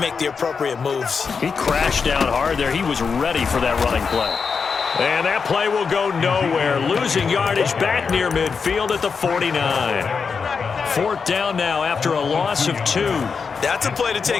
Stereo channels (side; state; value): right; quieter; 5.5 dB